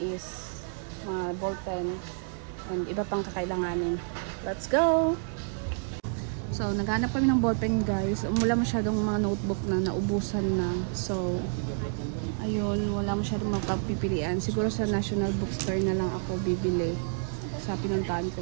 is mga ballpen and iba pang kakailanganin. Let's go! So, naghanap kami ng ballpen, guys. Wala masyadong mga notebook na naubusan na. So, ayun, wala masyadong mapagpipilian. Siguro sa National Bookstore na lang ako bibili sa pinuntahan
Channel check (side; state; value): left; silent; digital silence